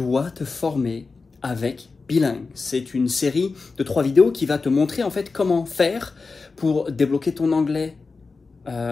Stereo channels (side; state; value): right; quieter; 4.2 dB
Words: te former avec Bilingue. C'est une série de 3 vidéos qui va te montrer en fait comment faire pour débloquer ton anglais